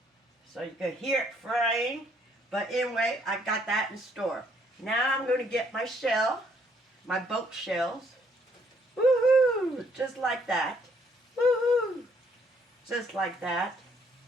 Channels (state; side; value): normal; both; correlation 0.67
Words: so you can hear it frying. But anyway, I got that in store. Now I'm going to get my shell, my boat shells. Woohoo! Just like that. Woohoo! Just like that.